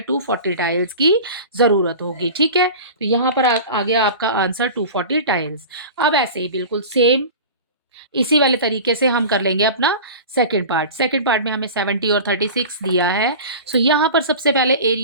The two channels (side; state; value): both; inverted; correlation -0.34